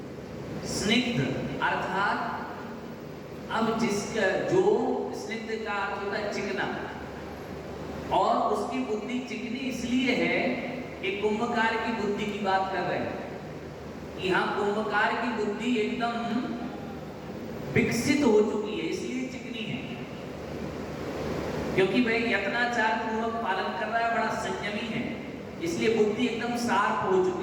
स्निग्ध अर्थात अब जिसका जो स्निग्ध का अर्थ होता है चिकना, और उसकी बुद्धि चिकनी इसलिए है कि कुंभकार की बुद्धि की बात कर रहे हैं। यहाँ कुंभकार की बुद्धि एकदम विकसित हो चुकी है, इसलिए चिकनी है, क्योंकि वह यत्नाचार पूर्वक पालन कर रहा है, बड़ा संयमी है, इसलिए बुद्धि एकदम शार्प हो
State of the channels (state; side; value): identical; both; correlation 1.00